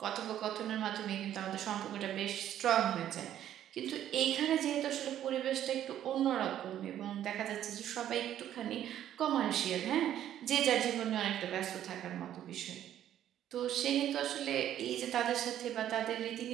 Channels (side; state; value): left; quieter; 11.3 dB